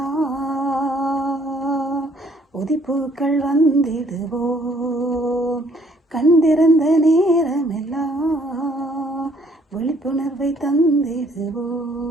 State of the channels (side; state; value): both; normal; correlation 0.63